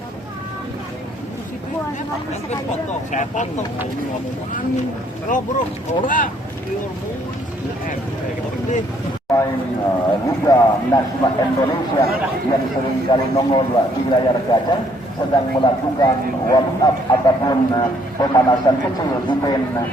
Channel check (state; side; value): normal; both; correlation 0.66